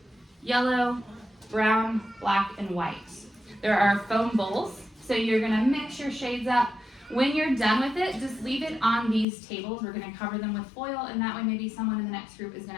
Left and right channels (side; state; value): right; drops out; at 9.2 s